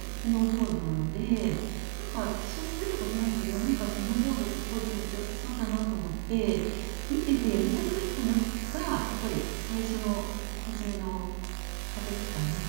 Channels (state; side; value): silent; left; digital silence